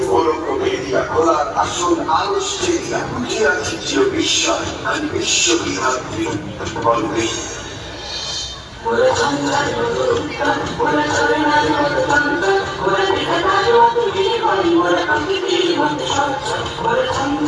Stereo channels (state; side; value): identical; both; correlation 1.00